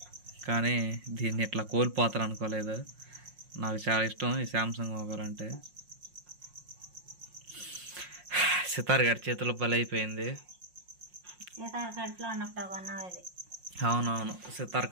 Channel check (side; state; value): left; late; 5.6 ms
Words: కానీ దీన్ని ఇట్లా కోల్పోతారు అనుకోలేదు. నాకు చాలా ఇష్టం ఈ శాంసంగ్ మొబైల్ అంటే. సితార్ గడి చేతిలో బలైపోయింది. అవునవును, సితార్